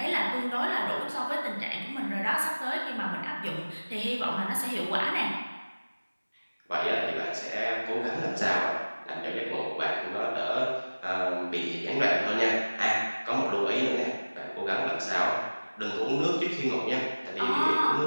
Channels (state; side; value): inverted; both; correlation -1.00